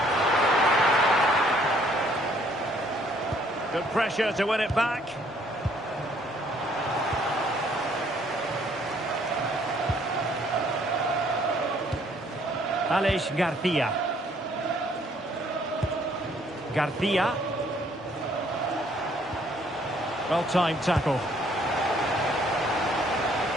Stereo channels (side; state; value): both; normal; correlation 0.63